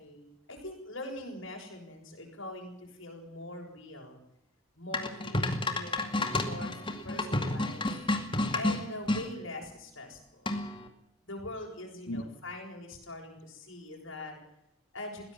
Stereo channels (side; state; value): both; normal; correlation 0.41